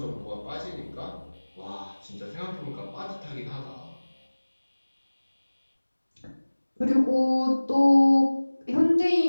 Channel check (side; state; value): both; inverted; correlation -1.00